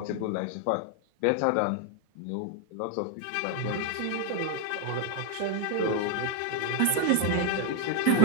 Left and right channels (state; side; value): different; both; correlation 0.01